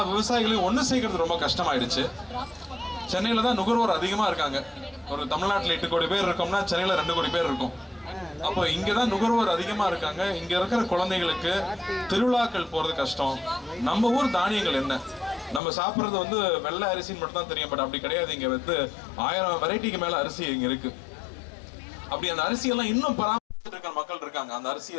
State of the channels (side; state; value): right; drops out; at 15.6 s